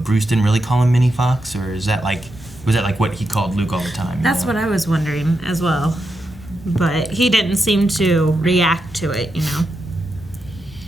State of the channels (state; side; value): normal; both; correlation 0.86